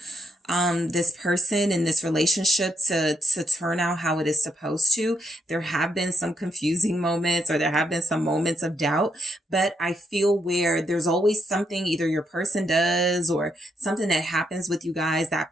this person in this relationship to turn out how it is supposed to. There have been some confusing moments, or there have been some moments of doubt, but I feel where there's always something either your person does or something that happens with you guys that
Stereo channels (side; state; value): both; normal; correlation 0.77